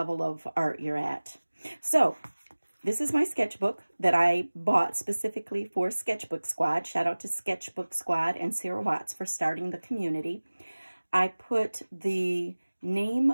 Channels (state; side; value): inverted; both; correlation -1.00